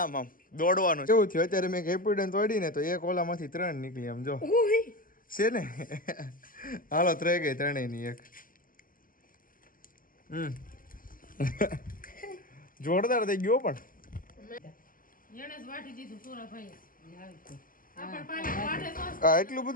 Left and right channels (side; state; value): right; late; 0.41 ms